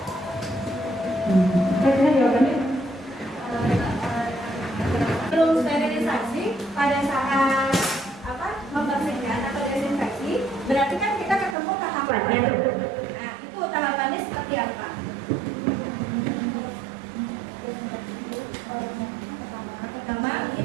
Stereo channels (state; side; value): drops out; left; at 11.6 s